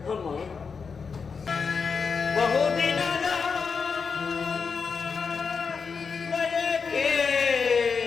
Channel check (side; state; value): right; quieter; 5.5 dB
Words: ಅಮ್ಮ, ಬಹುದಿನದ ಬಯಕೆ